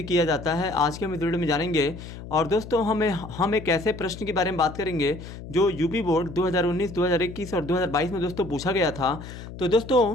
किया जाता है आज के हम इस वीडियो में जानेंगे। और दोस्तों हम एक ऐसे प्रश्न के बारे में बात करेंगे जो यूपी बोर्ड 2019, 2021 और 2022 में दोस्तों पूछा गया था। तो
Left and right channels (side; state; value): left; noise; hum, 12 dB below the sound